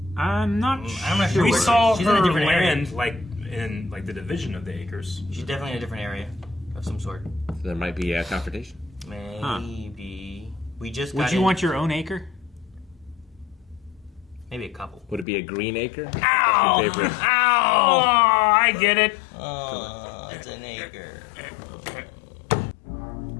I'm not sure. We saw she's her in a different land area. like in the division of the acres. She's definitely in a different area of some sort. So there might be a confrontation. Maybe. We just Would you want your own acre? Maybe a couple. Would it be a Green Acre? Ow! That's your favorite. Oh, I get it. Oh, it's an acre.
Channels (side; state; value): right; drops out; at 15.2 s